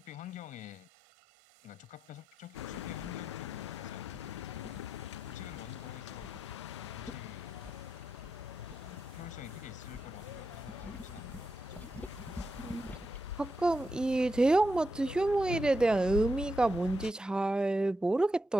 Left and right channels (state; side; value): normal; both; correlation 0.87